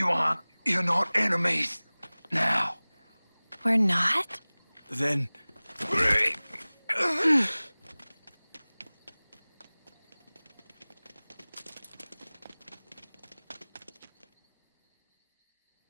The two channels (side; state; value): both; inverted; correlation -1.00